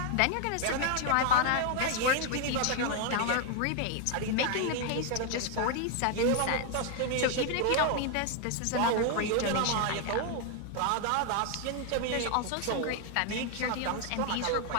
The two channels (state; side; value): different; both; correlation 0.00